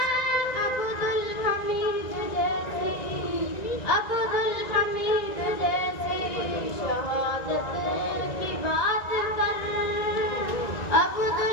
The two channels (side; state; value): right; late; 1.9 ms